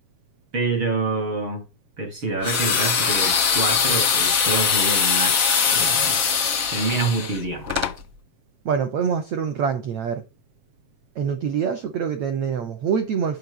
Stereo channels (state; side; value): late; left; 7.5 ms